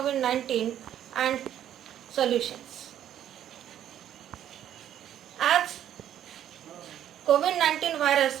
and Solutions. As COVID-19 virus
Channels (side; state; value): left; quieter; 10.8 dB